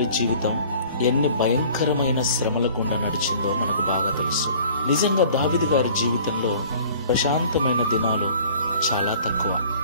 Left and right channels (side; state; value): both; inverted; correlation -0.49